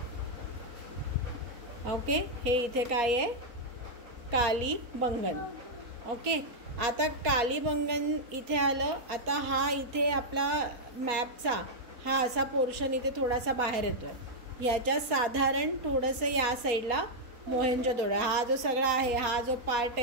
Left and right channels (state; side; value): late; left; 4.2 ms